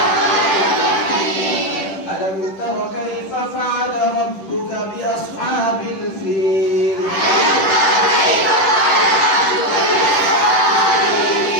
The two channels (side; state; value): right; late; 10 ms